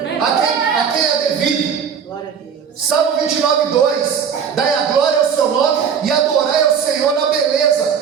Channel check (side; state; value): left; quieter; 7.2 dB